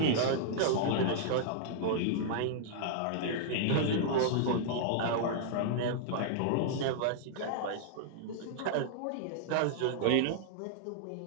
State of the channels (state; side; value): different; both; correlation -0.02